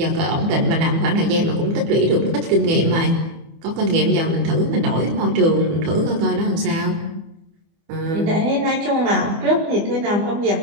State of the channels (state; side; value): late; left; 25 ms